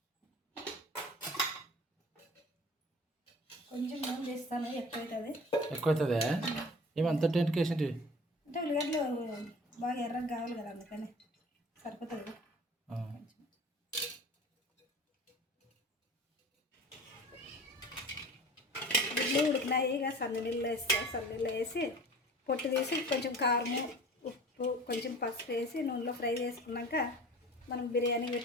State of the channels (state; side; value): normal; both; correlation 0.42